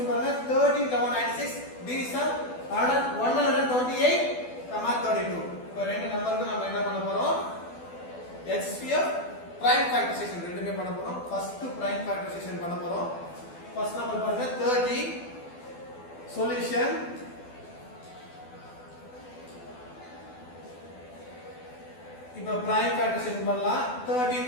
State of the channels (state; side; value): late; right; 12 ms